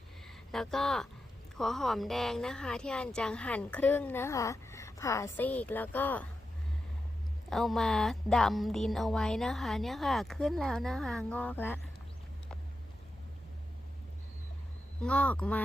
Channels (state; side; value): normal; both; correlation 0.89